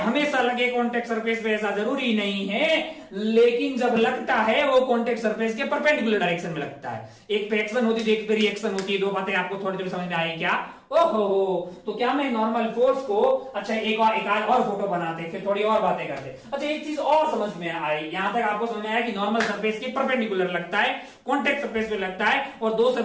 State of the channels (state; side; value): identical; both; correlation 1.00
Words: लगे कॉन्टेक्ट सरफेस पे ऐसा जरूरी नहीं है, लेकिन जब लगता है वो कॉन्टेक्ट सरफेस के परपेंडिकुलर डायरेक्शन में लगता है। एक पे एक्शन होती है, एक पे रिएक्शन होती है। दो बातें आपको थोड़ी थोड़ी समझ में आई क्या? ओहो, तो क्या मैं नॉर्मल फोर्स को, अच्छा एक और फोटो बनाते, फिर थोड़ी और बातें करते। अच्छा एक चीज और समझ में आई, यहां तक आपको समझ में आया कि नॉर्मल सरफेस के परपेंडिकुलर लगता है, कॉन्टेक्ट सरफेस पे लगता है, और दो